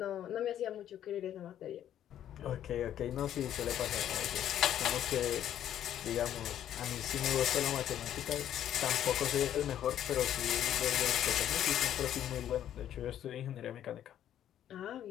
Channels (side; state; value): right; quieter; 10.9 dB